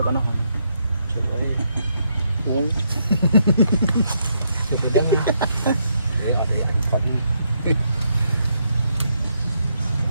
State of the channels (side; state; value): both; inverted; correlation -0.77